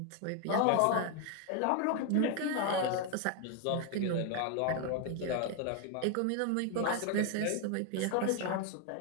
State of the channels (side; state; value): both; different; correlation 0.01